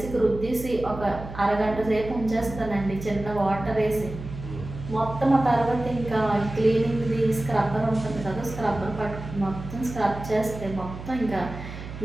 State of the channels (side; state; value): right; noise; hum, 11 dB below the sound